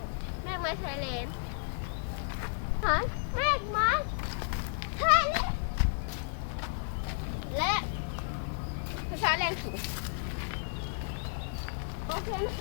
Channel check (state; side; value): silent; right; 56 dB below the other